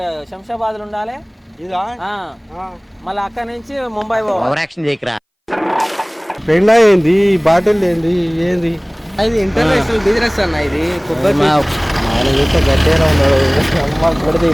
శంషాబాద్లో ఉండాలి ఇదా మళ్ళీ అక్కడి నుంచి ముంబై పోవాలి. పెండా ఏంది బాటిల్ ఏంది ఏంది అది ఇంటర్నేషనల్ బిజినెస్ అన్న ఇది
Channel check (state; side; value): identical; both; correlation 1.00